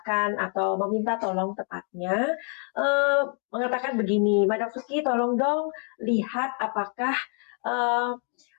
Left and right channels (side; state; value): right; quieter; 39.7 dB